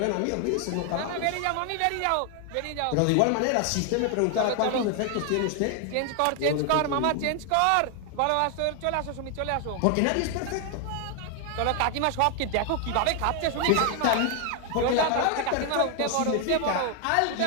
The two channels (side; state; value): both; different; correlation 0.00